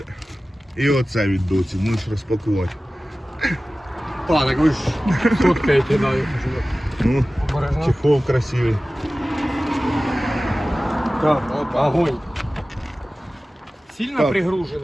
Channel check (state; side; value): normal; both; correlation 0.96